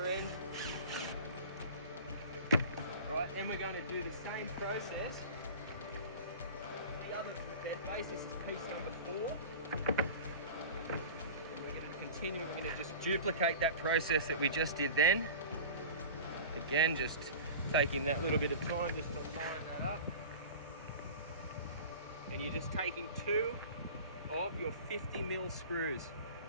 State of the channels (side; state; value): both; inverted; correlation -0.37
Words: end. Right, then we're going to do the same process. The other bed base, this is piece number 4. And we're going to continue, we're going to just duplicate that process that we just did then. Again, just taking that little bit of time just to line that up. And you're just taking 2 of your 50 mil screws.